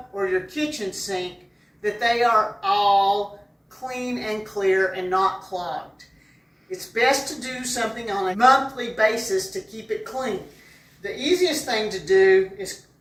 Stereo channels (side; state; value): both; identical; correlation 1.00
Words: or your kitchen sink, that they are all clean and clear and not clogged. It's best to do something on a monthly basis to keep it clean. The easiest thing to do is